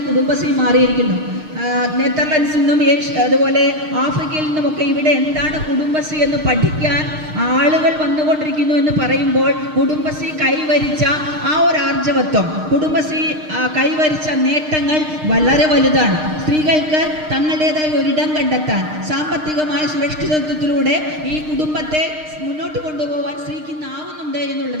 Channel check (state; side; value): late; left; 6.5 ms